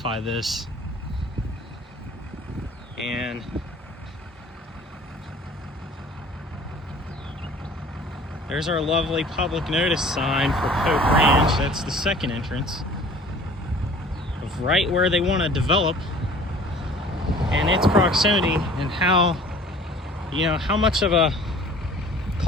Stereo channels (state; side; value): normal; both; correlation 0.48